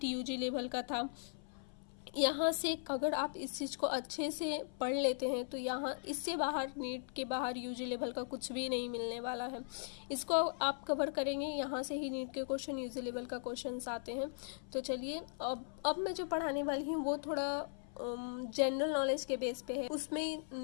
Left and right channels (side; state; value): right; silent; 52 dB below the other